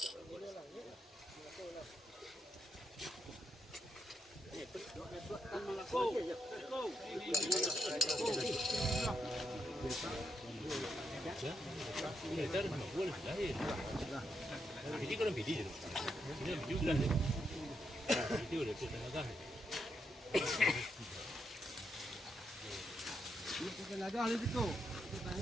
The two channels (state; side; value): normal; both; correlation 0.80